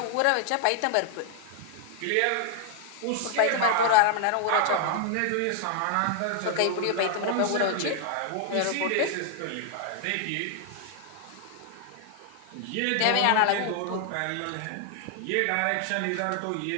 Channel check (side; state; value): both; different; correlation 0.00